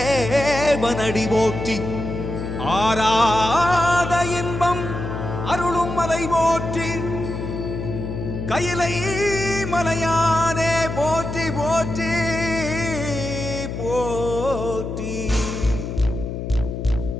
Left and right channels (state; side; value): noise; left; hum, 6 dB below the sound